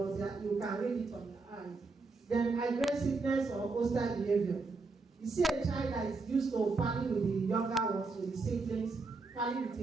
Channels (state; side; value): quieter; left; 3.9 dB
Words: you can read it on their eyes. Then aggressiveness or hostile behavior. You see a child that is used to party with the younger ones, with the siblings, party with